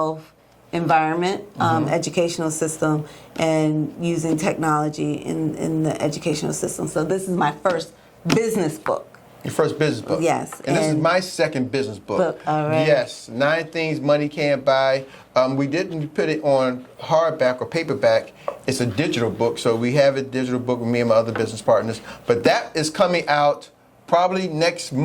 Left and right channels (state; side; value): identical; both; correlation 1.00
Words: environment, educational system, and using technology in the educational system. So this is my first business book. Your first business book. Yes. And this is my second business book. All right. Yes, 9 Things Money Can't Buy. We didn't put it on hardback or paperback. It's a digital book, so we have a digital book with me and my other business partners. But that is coming out probably next